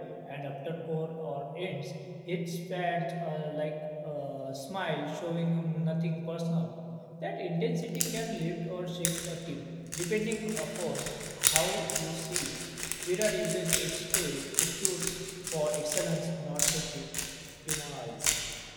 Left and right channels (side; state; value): both; identical; correlation 1.00